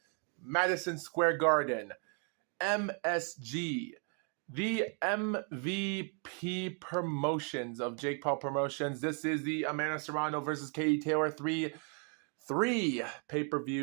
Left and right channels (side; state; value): left; quieter; 39.5 dB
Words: Madison Square Garden, MSG, the MVP promotions of Jake Paul Promotions. This is the Amanda Serrano versus Katie Taylor 3